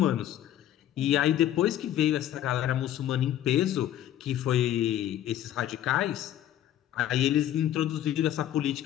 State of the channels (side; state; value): right; quieter; 11.9 dB